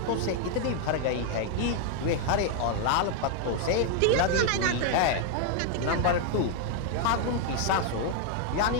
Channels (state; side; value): different; both; correlation 0.00